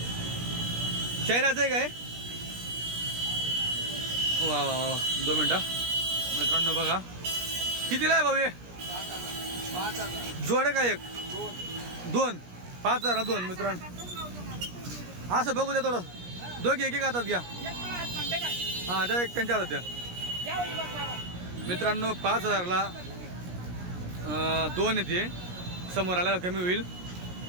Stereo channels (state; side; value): late; left; 17 ms